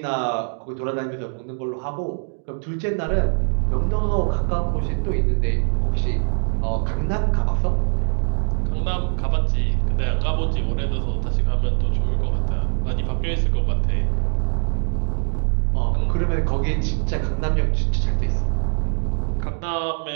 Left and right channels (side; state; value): left; silent; digital silence